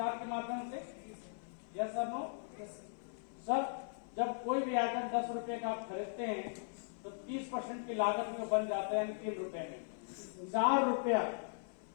के माध्यम से। यस सर, नो सर, जब कोई भी आइटम 10 रुपए का आप खरीदते हैं तो 30% की लागत में बन जाता है, यानी 3 रुपए में 4 रुपया,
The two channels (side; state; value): right; silent; 52 dB below the other